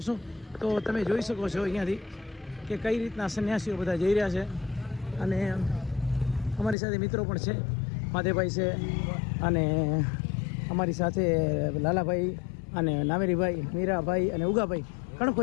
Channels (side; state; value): right; drops out; at 6.8 s